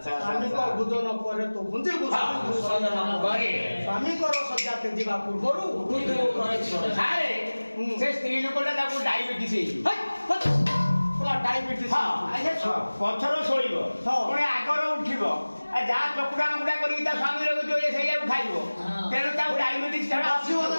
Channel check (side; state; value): both; inverted; correlation -1.00